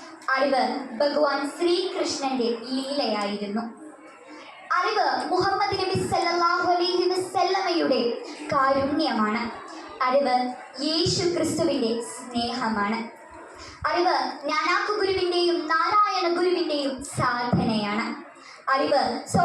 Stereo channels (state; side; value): identical; both; correlation 1.00